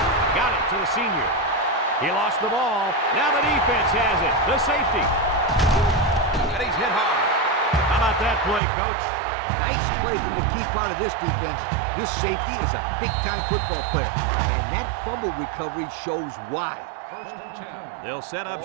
Got it to the senior. He lost the ball. Now the defense has it. The safety. And he's hit hard. How about that play, Coach? Nice play from the key part of this defense. This safety is a big-time football player. And that fumble recovery shows why. First and 10. They'll set up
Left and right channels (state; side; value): drops out; left; at 8.6 s